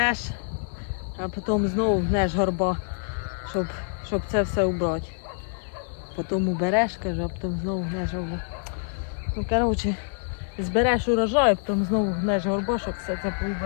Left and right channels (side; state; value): right; silent; digital silence